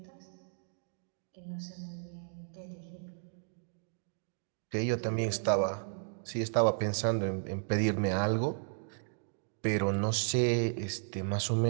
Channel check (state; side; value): silent; left; digital silence